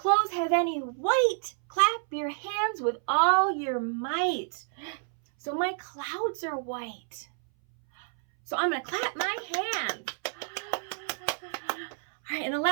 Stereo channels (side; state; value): left; silent; 59 dB below the other